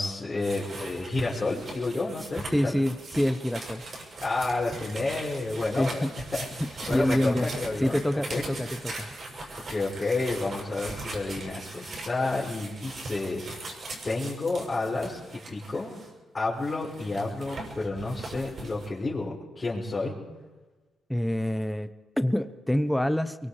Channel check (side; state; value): both; normal; correlation 0.94